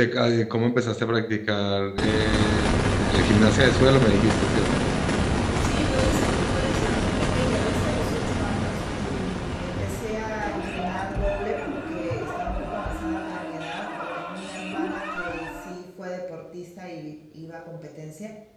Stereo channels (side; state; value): both; identical; correlation 1.00